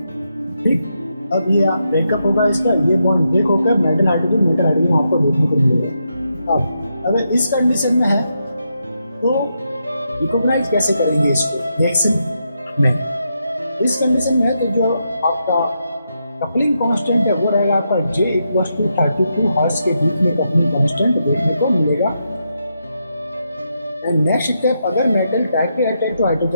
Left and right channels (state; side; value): inverted; both; correlation -0.83